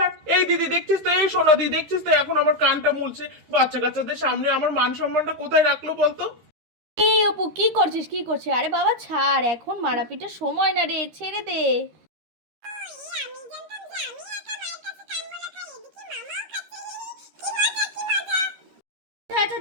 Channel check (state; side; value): late; left; 13 ms